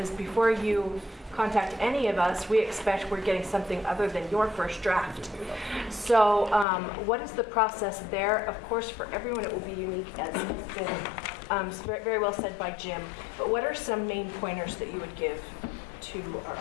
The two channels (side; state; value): right; drops out; at 6.7 s